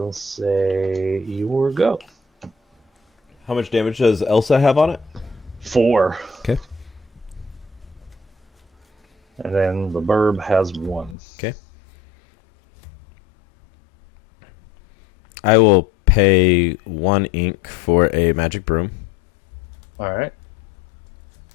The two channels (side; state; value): right; drops out; at 11.2 s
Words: say your go. How much damage does Elsa have on it? 4. Okay. And then the Burb has 1. Okay. I will pay 1 ink for a magic broom. All right.